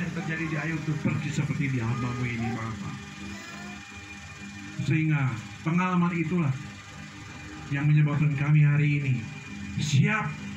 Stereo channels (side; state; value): both; identical; correlation 1.00